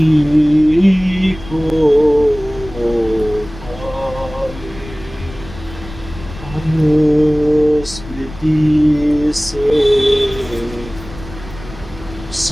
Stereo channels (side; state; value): left; noise; rumble, 15 dB below the sound